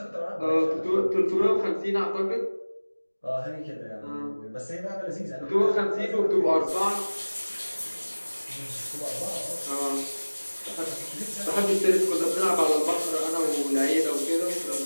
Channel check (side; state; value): both; inverted; correlation -1.00